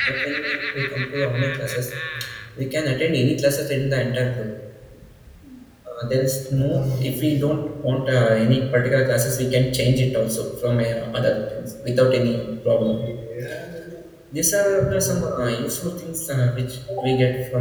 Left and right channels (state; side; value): identical; both; correlation 1.00